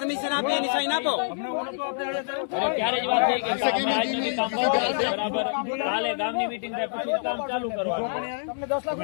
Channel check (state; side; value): silent; right; 61 dB below the other